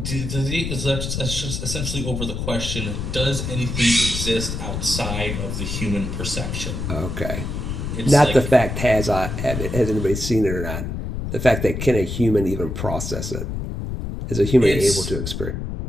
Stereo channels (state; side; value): noise; left; rumble, 4 dB below the sound